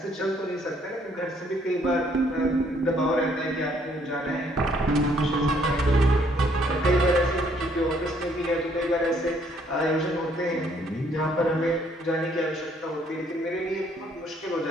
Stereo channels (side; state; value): both; normal; correlation 0.66